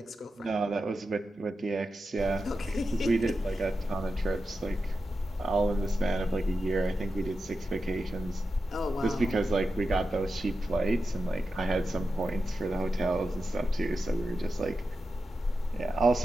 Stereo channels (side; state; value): both; normal; correlation 0.90